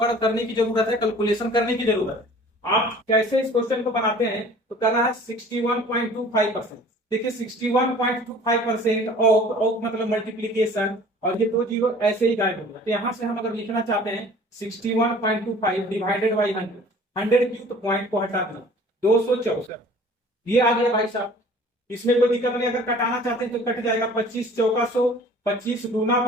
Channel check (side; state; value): both; normal; correlation 0.48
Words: करने की जरूरत है, कैलकुलेशन करने की जरूरत है। आप कैसे इस क्वेश्चन को बनाते हैं, तो करना है 61.25%। देखिए 61.25% ऑफ मतलब मल्टीप्लीकेशन, और ये 2 जीरो ऐसे ही गायब होगा। तो यहाँ से हम अगर लिखना चाहते हैं 61.25 डिवाइडेड बाई 100, 100 क्यूब पॉइंट को हटा देना, 264 ये आ गया भाई साहब। इसमें कोई दिक्कत नहीं, अगर कटाना चाहते हैं तो कट जाएगा। 25 चौका 100, 25 दूना